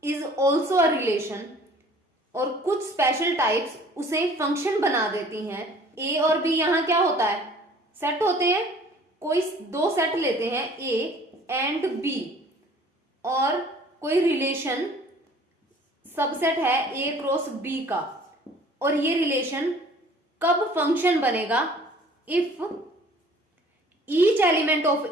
is also a relation. और कुछ स्पेशल टाइप्स उसे फंक्शन बना देती हैं। ए और बी यहां क्या होता है, सेट होते हैं। कोई दो सेट लेते हैं, ए एंड बी, और कोई रिलेशन सबसेट है ए क्रॉस बी का, और ये रिलेशन कब फंक्शन बनेगा, इफ ईच एलिमेंट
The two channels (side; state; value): both; normal; correlation 0.51